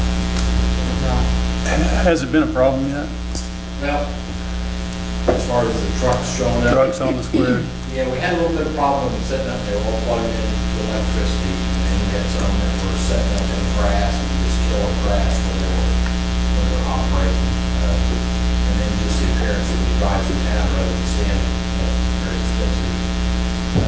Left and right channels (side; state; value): both; identical; correlation 1.00